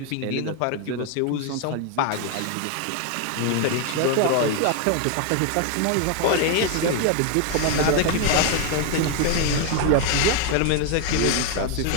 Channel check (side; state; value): both; different; correlation 0.01